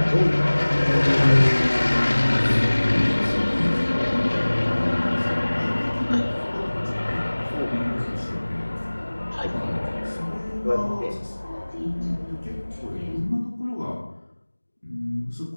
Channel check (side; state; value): both; inverted; correlation -1.00